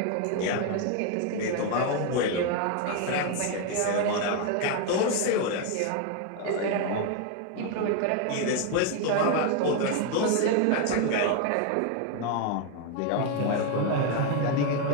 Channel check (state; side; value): different; both; correlation 0.01